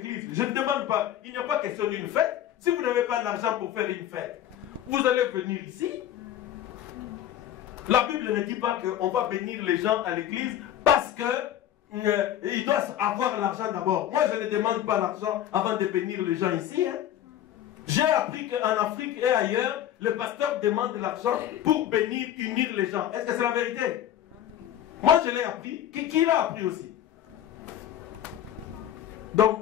je ne demande pas, il n'y a pas question d'une fête. Si vous n'avez pas d'argent pour faire une fête, vous allez venir ici. La Bible ne dit pas qu'on va bénir les gens à l'église parce qu'ils doivent avoir l'argent d'abord. Moi, je ne demande pas l'argent avant de bénir les gens ici. Hein. J'ai appris qu'en Afrique et ailleurs, le pasteur demande l'argent pour bénir, unir les gens. Est-ce que c'est la vérité? Moi, je l'ai appris. Qui l'a appris aussi? Donc,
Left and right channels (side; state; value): right; quieter; 11.4 dB